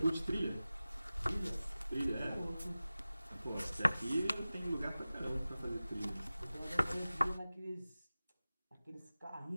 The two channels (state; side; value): inverted; both; correlation -0.97